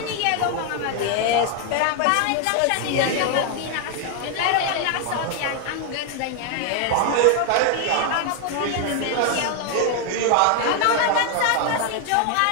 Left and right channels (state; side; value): different; both; correlation 0.00